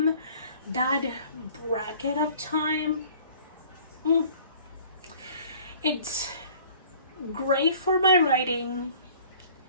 That bracket of time, it's great for my writing.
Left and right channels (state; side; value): inverted; both; correlation -0.51